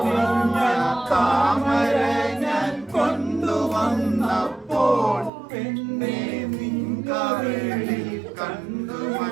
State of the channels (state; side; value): drops out; left; at 5.3 s